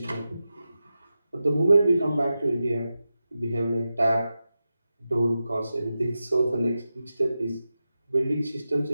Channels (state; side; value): inverted; both; correlation -0.91